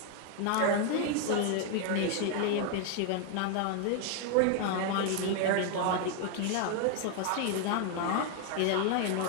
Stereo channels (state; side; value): different; both; correlation 0.00